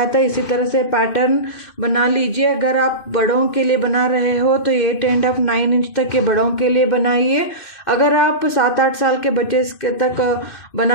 था इसी तरह से पैटर्न बना लीजिए। अगर आप बड़ों के लिए बना रहे हो तो 8 and 9 इंच तक के बड़ों के लिए बनाइए। अगर आप 7-8 साल के बच्चे तक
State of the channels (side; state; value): right; late; 2.6 ms